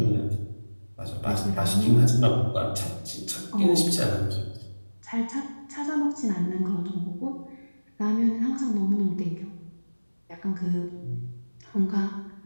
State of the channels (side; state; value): both; inverted; correlation -1.00